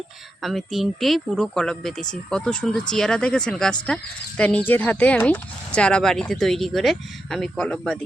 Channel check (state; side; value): normal; both; correlation 0.86